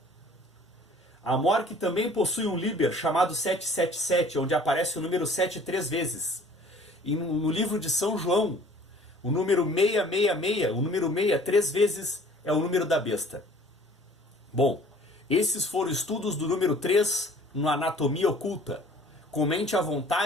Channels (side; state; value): both; normal; correlation 0.51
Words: A Mork também possui um liber chamado 777, onde aparece o número 7 3 vezes. E no livro de São João, o número 666, o número 6 3 vezes, é o número da besta. Bom, esses foram estudos do número 3 no Anatomia Oculta. Comente à